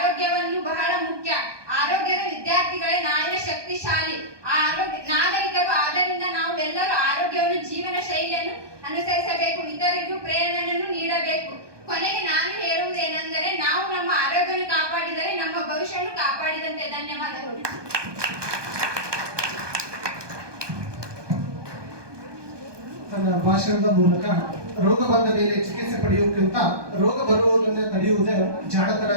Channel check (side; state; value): left; late; 1.2 ms